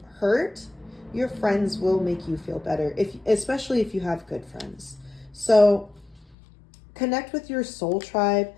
hurt, your friends will make you feel better, especially if you have good friends. So connect with your soul tribe,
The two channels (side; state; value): right; drops out; at 6.4 s